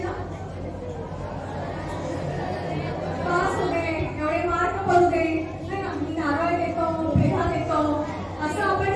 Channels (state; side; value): identical; both; correlation 1.00